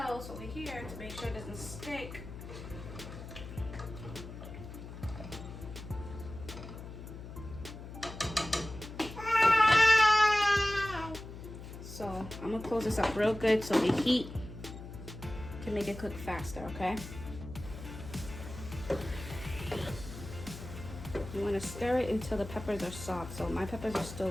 over here to make sure it doesn't stick. So I'm gonna close this up real good so the heat can make it cook faster, okay? You wanna stir it until the peppers are soft. So my peppers are still a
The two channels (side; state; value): left; noise; hum, 11 dB below the sound